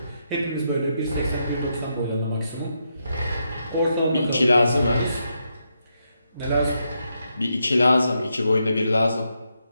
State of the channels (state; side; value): inverted; both; correlation -0.82